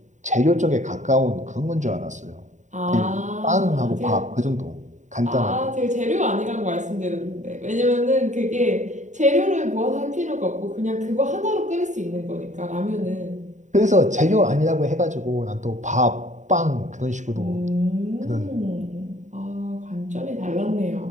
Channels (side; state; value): left; late; 0.35 ms